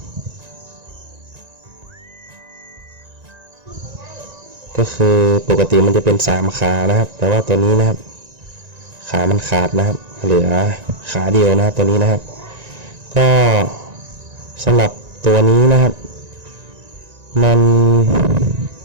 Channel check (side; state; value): left; late; 1.9 ms